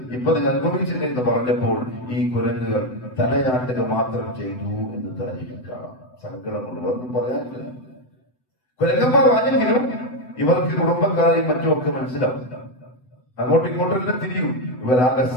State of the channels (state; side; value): late; right; 7.9 ms